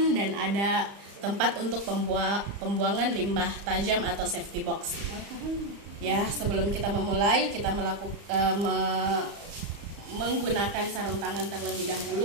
dan ada tempat untuk pembuangan limbah tajam atau safety box. Ya, sebelum kita memulai, kita menggunakan sarung tangan terlebih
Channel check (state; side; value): late; left; 35 ms